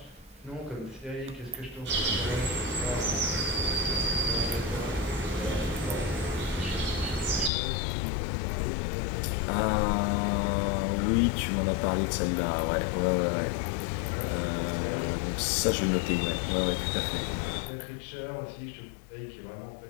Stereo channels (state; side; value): drops out; right; at 7.5 s